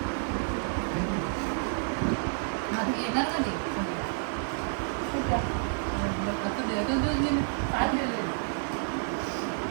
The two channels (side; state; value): left; silent; digital silence